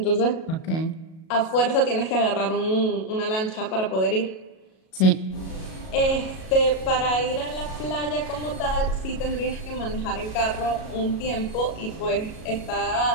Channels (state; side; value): late; right; 37 ms